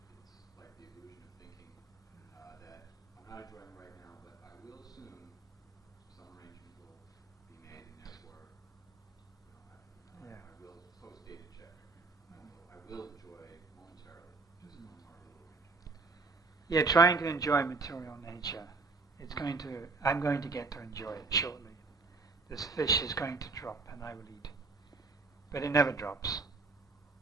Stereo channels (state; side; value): quieter; left; 3.9 dB